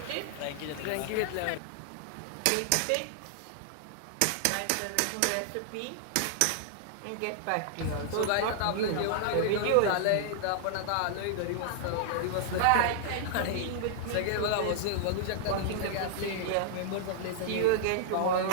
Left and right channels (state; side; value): different; both; correlation -0.01